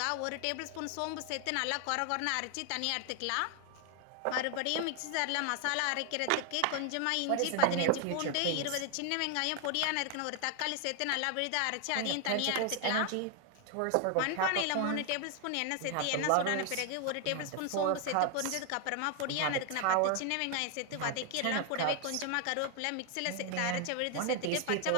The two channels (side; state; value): both; different; correlation 0.00